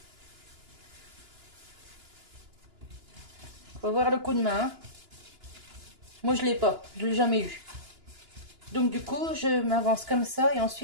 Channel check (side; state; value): left; late; 2.9 ms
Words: Faut voir le coup de main. Hein. Moi je l'ai pas, je l'ai jamais eu. Donc du coup, je m'avance comme ça et